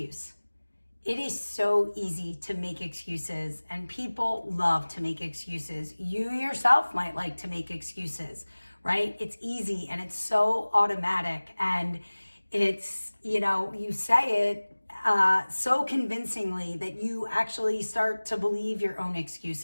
It is so easy to make excuses, and people love to make excuses. You yourself might like to make excuses, right? It's easy and it's so automatic, and it's, you say it so convincingly that you actually start to believe your own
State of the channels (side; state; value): both; inverted; correlation -1.00